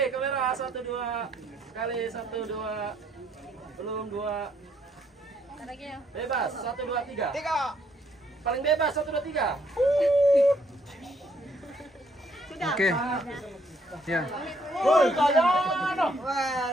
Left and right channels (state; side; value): normal; both; correlation 0.69